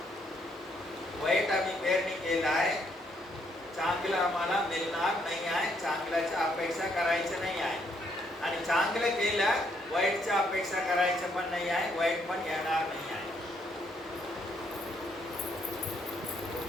वाईट आम्ही पेरणी केलं आहे, चांगलं आम्हाला मिळणार नाही आहे, चांगल्याची अपेक्षा करायचं नाही आहे. आणि चांगलं केलं वाईटची अपेक्षा करायचं पण नाही आहे, वाईट पण येणार नाही आहे.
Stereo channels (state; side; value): normal; both; correlation 0.72